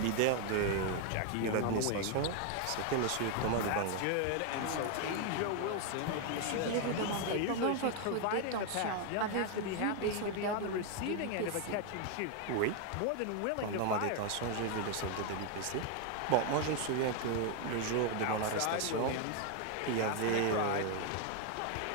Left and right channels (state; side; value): different; both; correlation 0.01